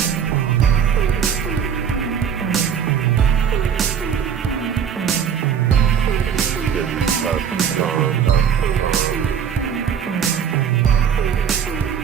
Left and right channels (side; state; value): left; quieter; 7.9 dB